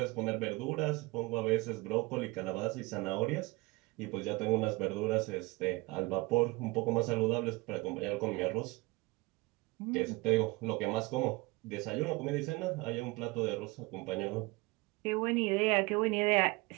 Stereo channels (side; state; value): left; quieter; 24.5 dB